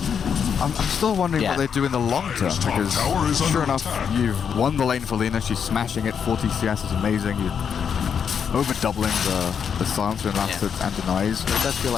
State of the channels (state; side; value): quieter; right; 7.2 dB